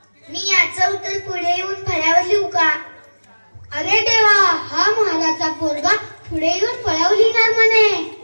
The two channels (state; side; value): inverted; both; correlation -1.00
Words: मी याचं उत्तर पुढे येऊन फळ्यावर लिहू का? अरे देवा, हा महाराजचा पोरगा पुढे येऊन फळावर लिहिणार म्हणे.